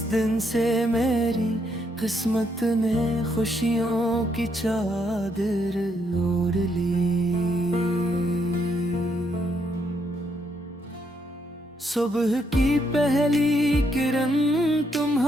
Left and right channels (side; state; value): both; normal; correlation 0.75